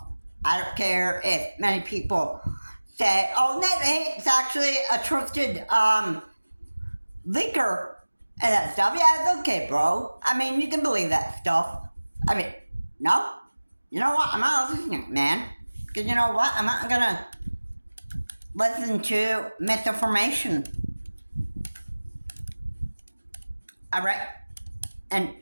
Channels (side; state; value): both; inverted; correlation -1.00